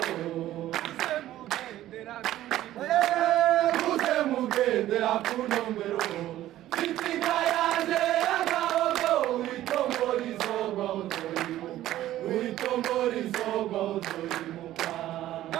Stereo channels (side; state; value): left; quieter; 13.9 dB